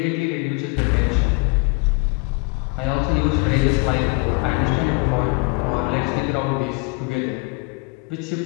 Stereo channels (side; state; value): right; quieter; 30.0 dB